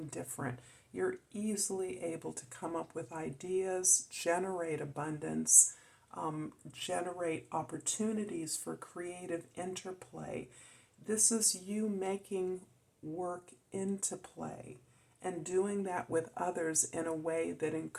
different. You're easily able to come up with ideas, generate abundance, generate opportunities for creative interplay. This is you making work into play and doing that with others in a way that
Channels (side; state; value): both; identical; correlation 1.00